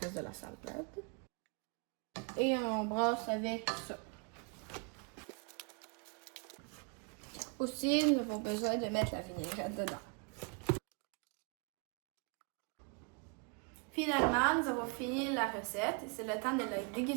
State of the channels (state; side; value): quieter; left; 34.5 dB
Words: de la salade. Et on brasse avec ça. Aussi, nous avons besoin de mettre la vinaigrette dedans. Finalement, nous avons fini la recette et c'est le temps de la